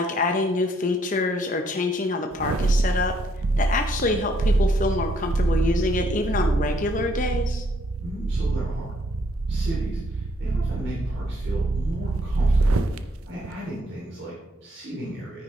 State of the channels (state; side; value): normal; both; correlation 0.69